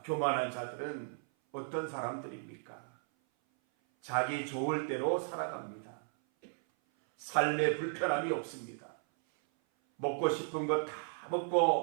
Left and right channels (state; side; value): silent; left; 54 dB below the other